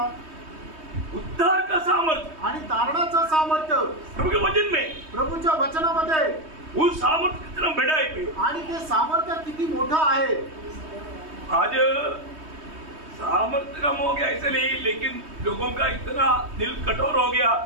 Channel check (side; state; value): left; late; 3.2 ms